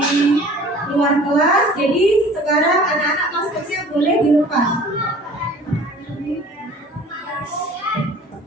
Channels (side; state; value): both; normal; correlation 0.47